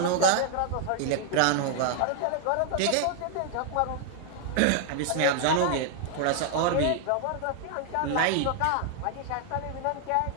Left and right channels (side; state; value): both; different; correlation 0.00